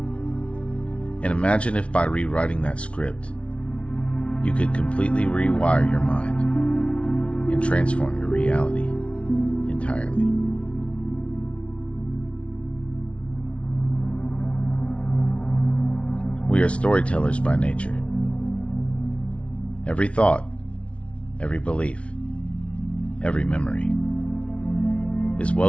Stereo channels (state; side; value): late; right; 0.061 ms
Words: And imagine if by rewriting that script, you could completely rewire your mind and transform your reality entirely. We are storytellers by nature. Every thought, every belief, every memory is